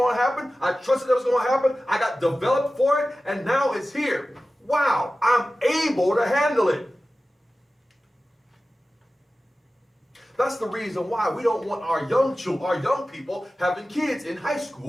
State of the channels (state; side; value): normal; both; correlation 0.95